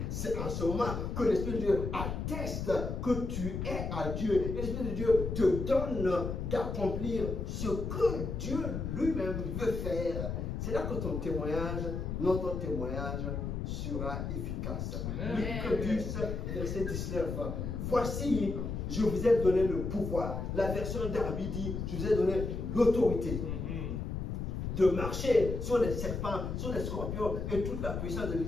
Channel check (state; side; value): noise; left; rumble, 3 dB below the sound